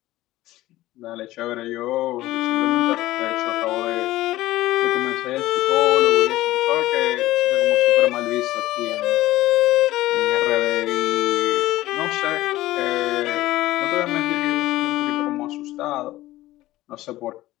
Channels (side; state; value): right; quieter; 16.4 dB